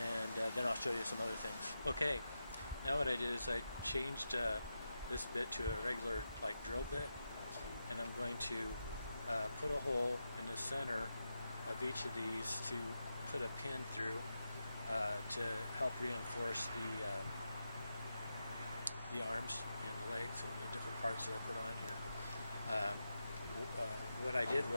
then I'll show you some other things. Okay, now what I did is I changed this bit to a regular drill bit, and I'm going to put a hole in the center of each of these to put a pin through to help reinforce the arms and the legs and the different parts that I put on here. What I did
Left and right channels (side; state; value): both; inverted; correlation -0.88